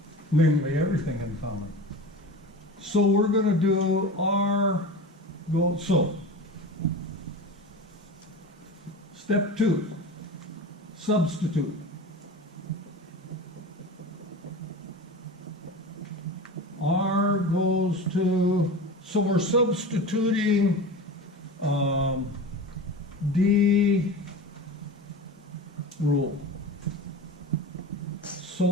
Namely, everything in common. So we're going to do R go, so. Step 2, substitute. R goes to, so we're substituting D rule.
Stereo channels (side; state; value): both; normal; correlation 0.30